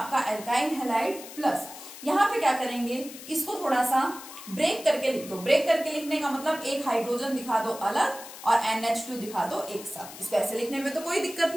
एल्काइल हैलाइड प्लस, यहाँ पे क्या करेंगे, इसको थोड़ा सा ब्रेक करके लिख दो। ब्रेक करके लिखने का मतलब एक हाइड्रोजन दिखा दो अलग और NH2 दिखा दो एक साथ। इसको ऐसे लिखने में तो कोई दिक्कत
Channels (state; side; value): noise; left; hiss, 14 dB below the sound